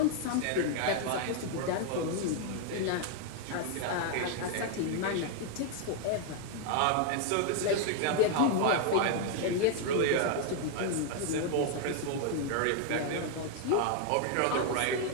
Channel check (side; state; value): both; different; correlation 0.00